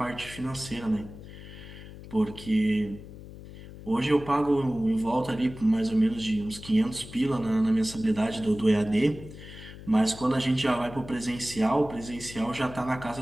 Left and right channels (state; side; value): noise; left; hum, 15 dB below the sound